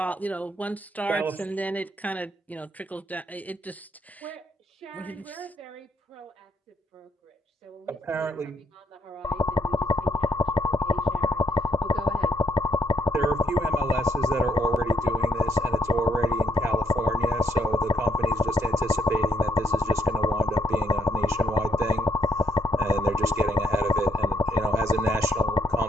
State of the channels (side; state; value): both; normal; correlation 0.73